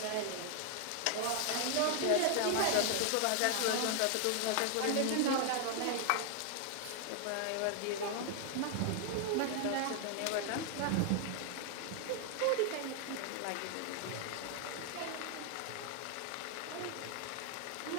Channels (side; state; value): both; different; correlation 0.00